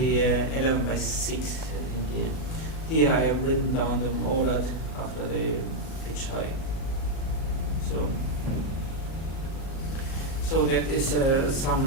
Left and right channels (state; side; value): late; right; 37 ms